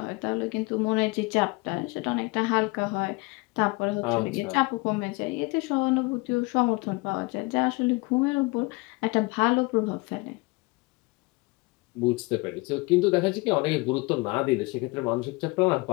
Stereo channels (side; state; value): right; quieter; 25.3 dB